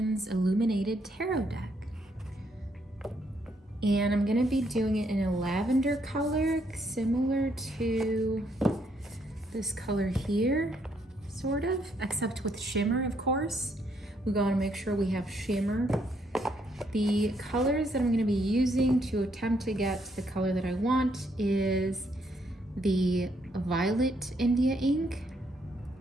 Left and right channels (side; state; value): both; normal; correlation 0.72